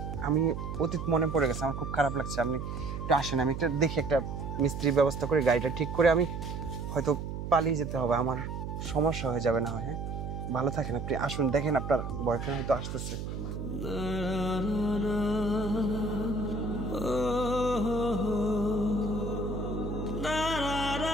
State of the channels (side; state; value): right; noise; hum, 6 dB below the sound